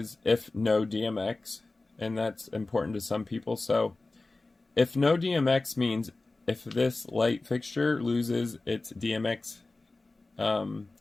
if no DMX, and that's important to some people. So if no DMX means if this light fixture loses its DMX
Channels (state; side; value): quieter; right; 3.3 dB